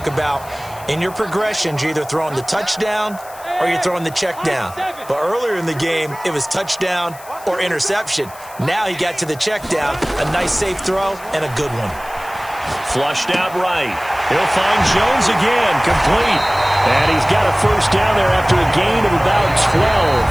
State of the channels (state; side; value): noise; left; hiss, 20 dB below the sound